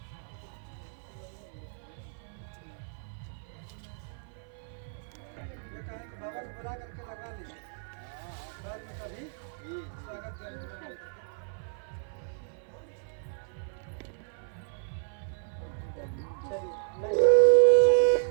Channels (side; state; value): left; silent; 57 dB below the other